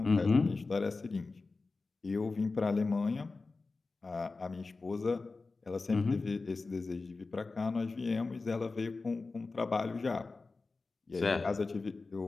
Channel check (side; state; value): right; quieter; 3.8 dB